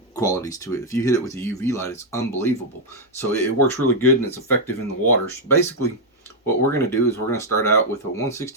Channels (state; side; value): normal; both; correlation -0.01